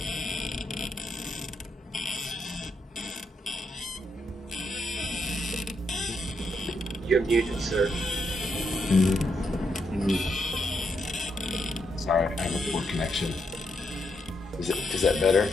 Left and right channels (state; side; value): normal; both; correlation 0.80